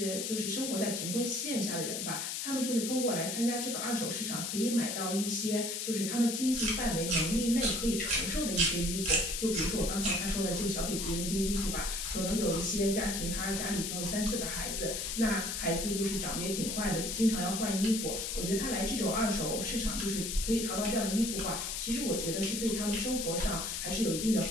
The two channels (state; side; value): noise; left; hiss, 3 dB below the sound